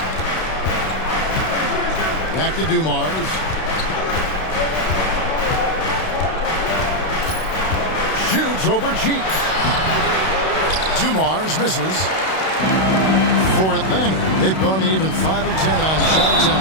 Back to Dumars. Shoots over Cheeks. Dumars misses. For Atlanta, they've gone even 5 of 10 on shot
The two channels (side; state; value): right; late; 32 ms